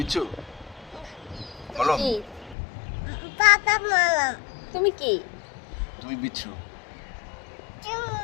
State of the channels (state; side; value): drops out; right; at 2.6 s